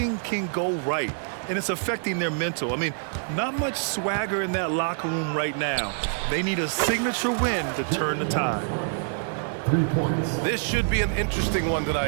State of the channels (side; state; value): left; silent; digital silence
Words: can go right, and it's affecting their mental. I mean, not much swagger in that locker room right now. They need a signature win to turn the tide. 3 points. This should be an interesting one